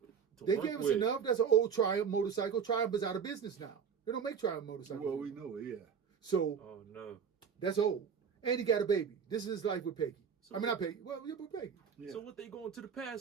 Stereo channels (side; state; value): left; quieter; 7.0 dB